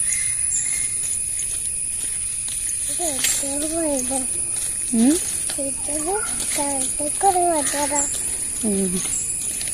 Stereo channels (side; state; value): right; noise; rumble, 15 dB below the sound